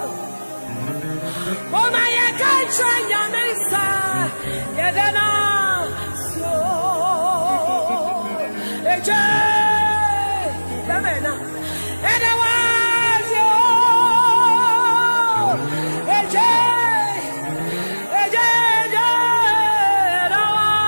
Mama yakan Chayame sa, Yanazio. Eje, Yamena, Yanazio. Eje, Eje, Yanazio.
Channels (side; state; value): both; inverted; correlation -1.00